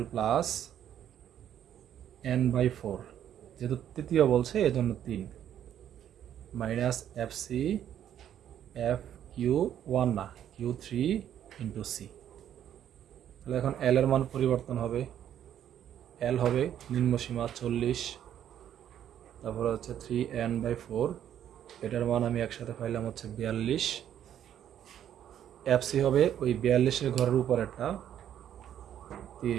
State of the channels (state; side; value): quieter; left; 10.3 dB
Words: প্লাস n/4, যেহেতু তৃতীয় বলছে এজন্য 3, মাইনাস FC FQ1 না Q3 ইন্টু C। তাহলে এখন L এর মান পরিবর্তন হবে, L হবে নিম্নসীমা 40, তারপরে হচ্ছে 3n/4, এটার মান আমি একসাথে পাইলাম হচ্ছে 42। FC হবে ওই 42-এর ঘরের উপর একটা